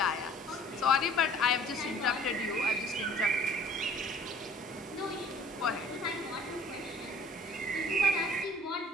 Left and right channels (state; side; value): normal; both; correlation 0.52